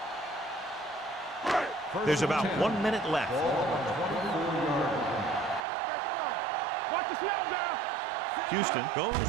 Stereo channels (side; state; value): left; drops out; at 5.7 s